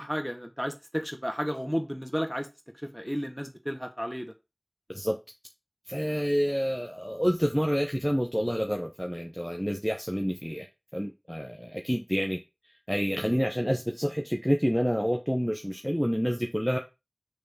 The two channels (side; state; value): both; identical; correlation 1.00